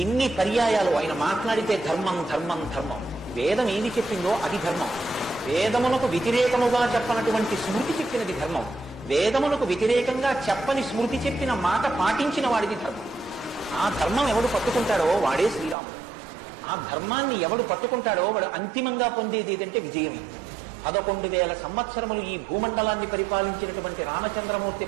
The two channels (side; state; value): left; drops out; at 15.8 s